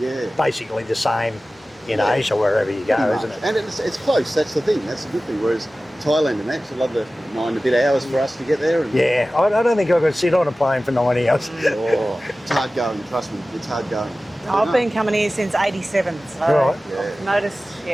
basically the same in Yeah. Asia, wherever you go, Pretty isn't much. it? And it's close, that's the thing, that's the good thing. Whereas Thailand and that, it's another 9 and a bit hours for us to get there. And, Yeah, I don't think I could sit on a plane for 90 hours. Oh, it's hard going, trust me, it's hard going. I've No. been coming here since '87, so Right. I've noticed.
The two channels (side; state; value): both; normal; correlation 0.96